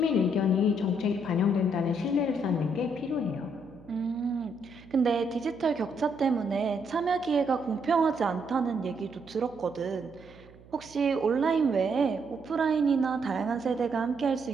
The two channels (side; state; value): right; noise; hum, 23 dB below the sound